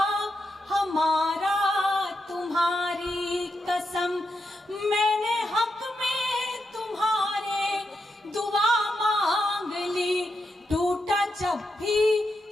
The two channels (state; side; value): normal; both; correlation 0.85